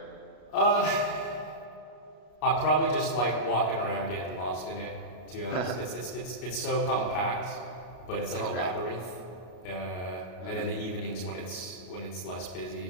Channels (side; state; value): right; late; 33 ms